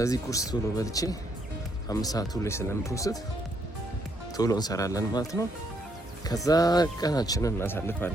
ቁርስ ቶሎ በልቼ 5 ሰዓቱ ላይ ስለምፖስት ቶሎ እንሰራለን ማለት ነው። ከዛ ቀናችንን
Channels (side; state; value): both; normal; correlation 0.73